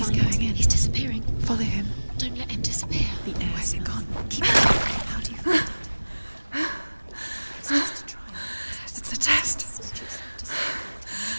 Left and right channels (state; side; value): inverted; both; correlation -1.00